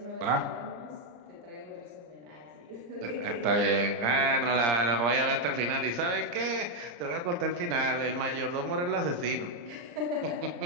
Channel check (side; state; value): left; late; 34 ms